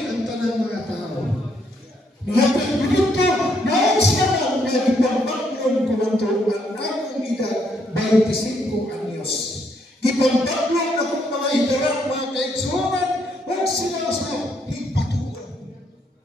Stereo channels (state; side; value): normal; both; correlation 0.73